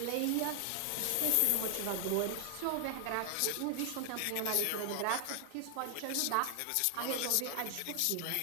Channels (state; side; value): different; both; correlation 0.00